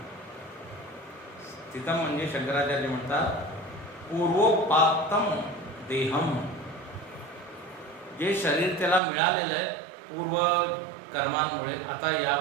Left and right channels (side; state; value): left; drops out; at 9.0 s